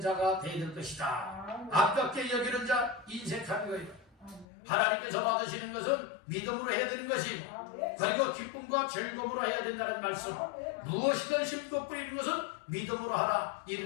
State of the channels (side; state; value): right; drops out; at 4.5 s